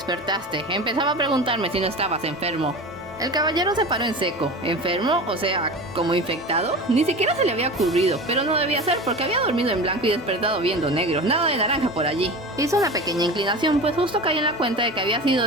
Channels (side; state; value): both; normal; correlation 0.31